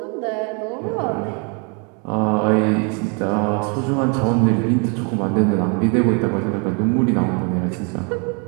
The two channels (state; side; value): quieter; left; 35.6 dB